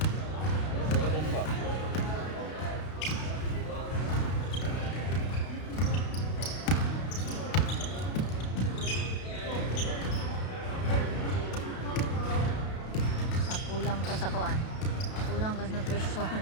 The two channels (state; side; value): late; right; 32 ms